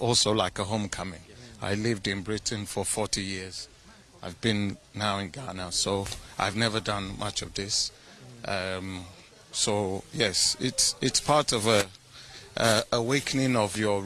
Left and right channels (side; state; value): both; identical; correlation 1.00